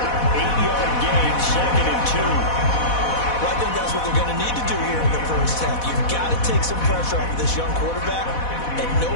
8-yard gain, 2nd and 2. Well, I think that's what they're going to need to do here in the first half. You've got to take some pressure off of this young quarterback, and no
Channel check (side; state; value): right; late; 4.1 ms